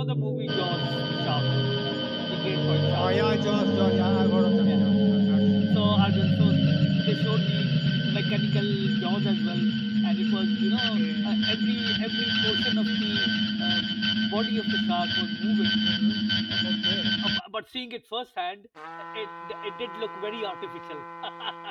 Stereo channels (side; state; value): both; identical; correlation 1.00